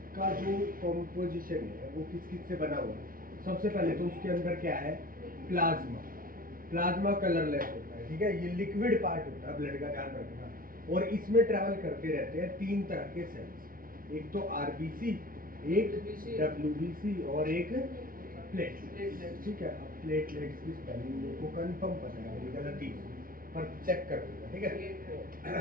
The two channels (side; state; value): left; late; 0.42 ms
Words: का जो कंपोजिशन है वो किस किस से बना हुआ है? सबसे पहले तो उसके अंदर क्या है? प्लाज्मा। प्लाज्मा कलरलेस होता है, ठीक है। ये लिक्विड पार्ट होता है ब्लड का, ध्यान रखना। और इसमें ट्रैवल करते रहते हैं 3 तरह के सेल्स, एक तो आरबीसी, एक डब्ल्यूबीसी और एक प्लेटलेट्स, ठीक है। अब प्लेटलेट्स की स्पेलिंग मेरे को कंफर्म पता है, मेरी गलती पर चेक कर दूंगा, ठीक है।